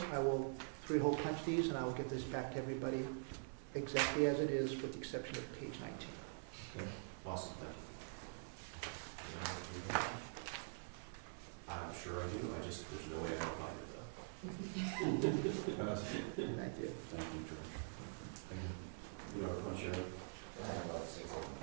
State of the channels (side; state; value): left; silent; digital silence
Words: I will 3-hole punch these, and I will get this back to everybody exactly as it is, with the exception of page 19. Okay. Awesome, thank you. I'm sure I do, there's no way I'm gonna find it though. Pass it. Thank you. Thank you, George. Thank you. You know how to punch your own? I have about 6 of